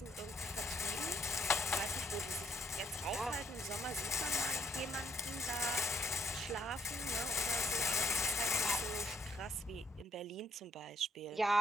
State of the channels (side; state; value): both; normal; correlation 0.70